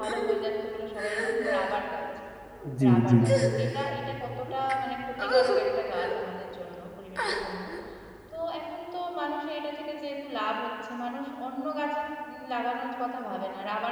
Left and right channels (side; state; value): both; identical; correlation 1.00